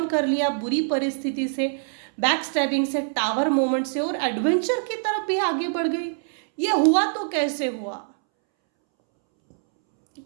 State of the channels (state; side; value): silent; left; 62 dB below the other